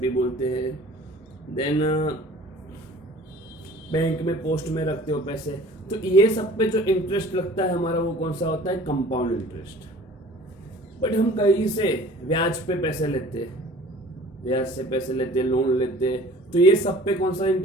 बोलते हैं. देन बैंक में पोस्ट में रखते हो पैसे, तो ये सब पे जो इंटरेस्ट लगता है हमारा वो कौन सा होता है? Compound interest. बट हम कहीं से ब्याज पे पैसे लेते हैं, ब्याज से पैसे लेते हैं, लोन लेते हैं, तो ये सब पे कौन सा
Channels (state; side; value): normal; both; correlation 0.47